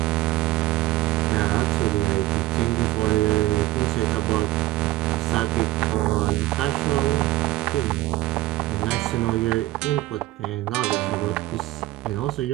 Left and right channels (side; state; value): left; quieter; 16.7 dB